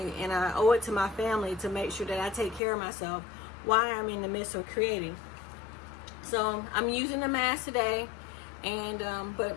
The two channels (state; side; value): drops out; right; at 2.6 s